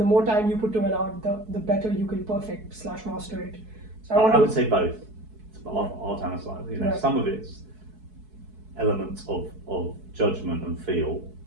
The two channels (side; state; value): left; late; 4.6 ms